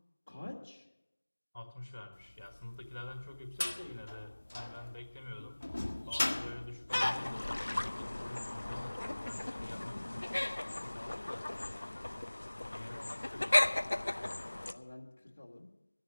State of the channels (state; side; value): inverted; both; correlation -1.00